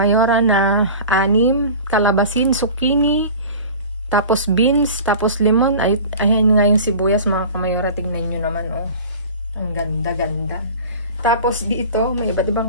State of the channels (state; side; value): inverted; both; correlation -0.38